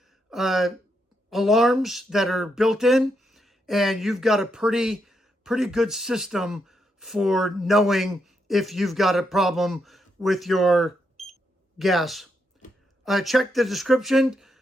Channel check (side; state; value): both; normal; correlation 0.80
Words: alarms that are built in, and you've got a pretty good system for knowing if you've got a problem with your gas. Check the description